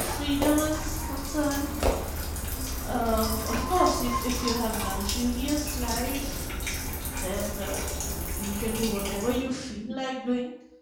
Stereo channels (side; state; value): both; identical; correlation 1.00